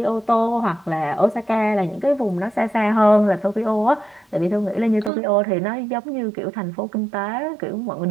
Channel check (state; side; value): drops out; left; at 5.1 s